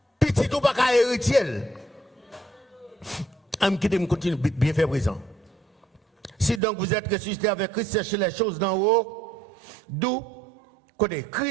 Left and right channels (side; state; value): left; drops out; at 6.6 s